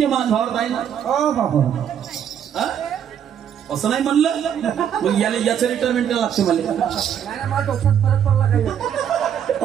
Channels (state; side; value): quieter; left; 9.0 dB